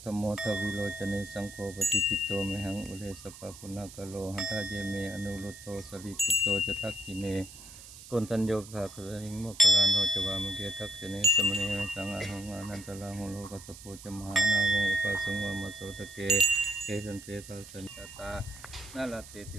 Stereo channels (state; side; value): noise; right; hiss, 16 dB below the sound